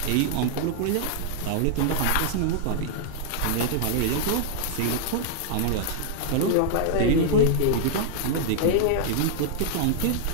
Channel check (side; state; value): both; different; correlation -0.01